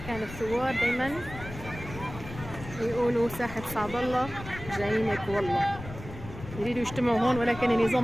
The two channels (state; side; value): noise; left; rumble, 12 dB below the sound